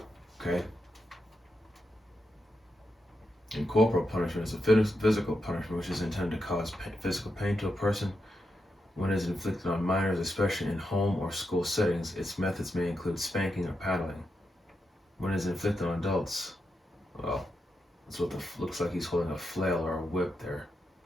Okay. And corporal punishment is a physical punishment which is intended to cause physical pain to a person. When it is inflicted on minors, especially in home or school settings, its methods may include spanking or paddling. When it is inflicted on adults, well, that's what looks like he's holding a flail or a whip there.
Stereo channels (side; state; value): both; normal; correlation 0.86